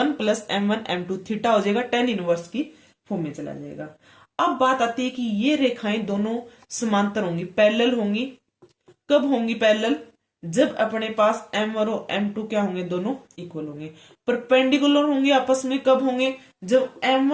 plus m1 m2, theta हो जाएगा टेन इनवर्स की फॉर्म में चला जाएगा। अब बात आती है कि ये रेखाएं दोनों समांतर होंगी, पैरेलल होंगी। कब होंगी पैरेलल? जब अपने पास m1 और m2 क्या होंगे? दोनों इक्वल होंगे। परपेंडिकुलर होंगे आपस में कब होंगे? जब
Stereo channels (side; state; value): both; identical; correlation 1.00